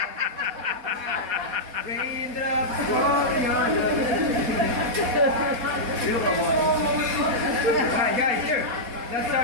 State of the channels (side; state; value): left; late; 4.2 ms